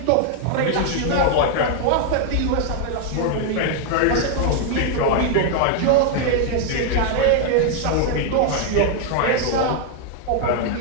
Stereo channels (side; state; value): both; different; correlation 0.00